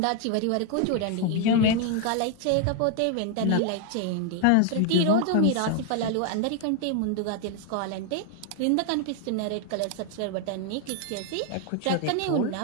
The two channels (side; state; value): both; different; correlation 0.01